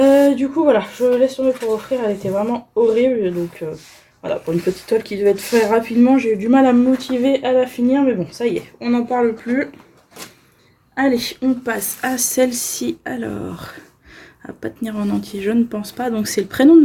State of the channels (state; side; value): identical; both; correlation 1.00